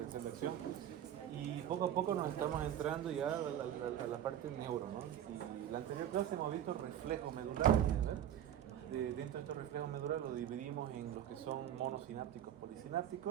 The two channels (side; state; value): left; quieter; 10.6 dB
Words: de acción. Y poco a poco nos estamos entrando ya a la parte neuro, ¿no? Y la anterior clase hemos visto reflejos medulares, ¿no? Dentro de estos reflejos medulares los dividimos en los que son monosinápticos,